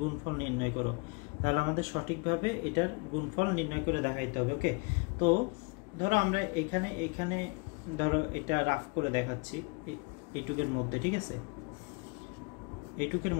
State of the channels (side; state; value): right; quieter; 30.4 dB